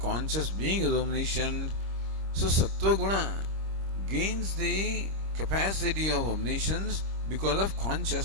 being, is omniscient. So Sattva Guna gains the capacity of omniscience because of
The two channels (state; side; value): late; left; 26 ms